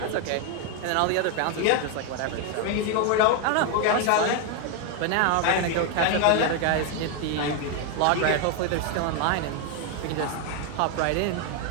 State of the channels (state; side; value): different; both; correlation 0.01